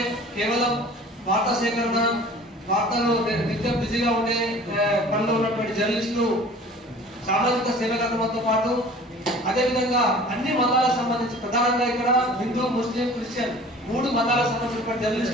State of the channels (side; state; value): both; normal; correlation 0.46